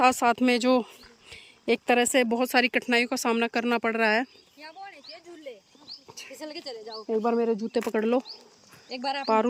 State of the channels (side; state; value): both; identical; correlation 1.00